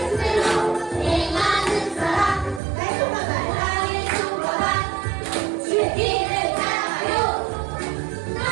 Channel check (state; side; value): drops out; left; at 2.6 s